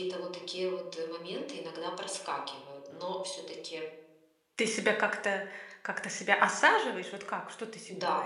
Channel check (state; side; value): identical; both; correlation 1.00